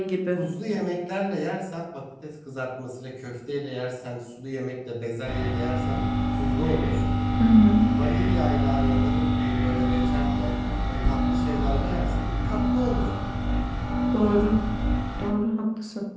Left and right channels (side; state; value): both; identical; correlation 1.00